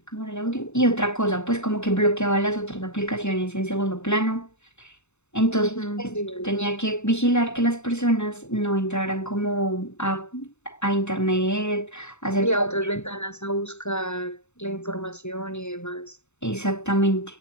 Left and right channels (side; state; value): right; late; 0.82 ms